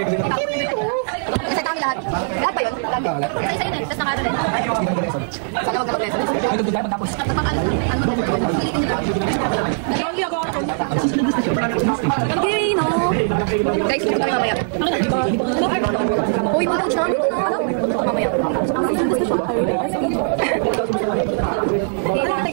Isa kami lahat. Lahat ba yun? Isa yun eh. Tapos nakaro rin. Sana wag na mag-leso. Okay, no. Guys, gusto kami mamaya. Uy, buto siya. Buto mamaya.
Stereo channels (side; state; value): left; silent; digital silence